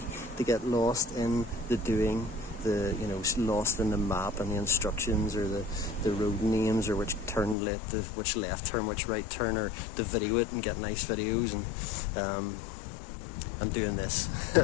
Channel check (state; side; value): drops out; right; at 7.6 s